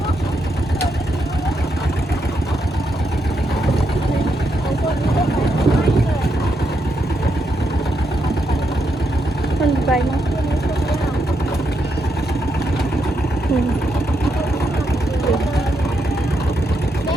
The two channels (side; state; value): both; normal; correlation 0.80